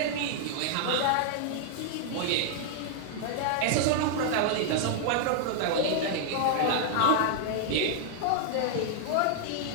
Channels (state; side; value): different; both; correlation 0.00